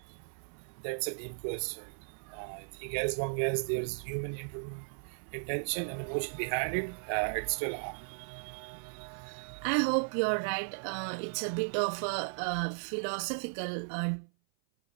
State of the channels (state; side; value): silent; left; 54 dB below the other